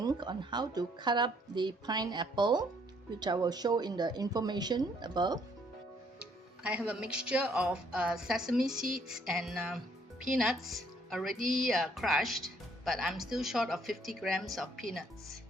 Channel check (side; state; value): both; normal; correlation 0.66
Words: on how to cut up the pineapple, which I will show in the information above. I have a mixture of sesame seeds and peanuts already crushed, but I'm still short of 50 grams of peanuts.